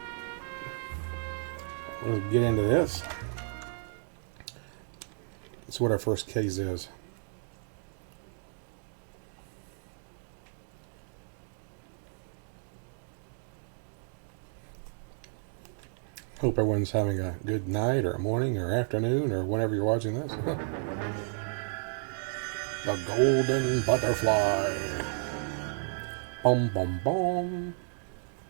Let's get into this. That's what our first case is. Hope everyone's having a good night or morning or afternoon or whenever you're watching this. The golden butterfly. Boom, boom, boom.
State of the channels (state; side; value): silent; left; digital silence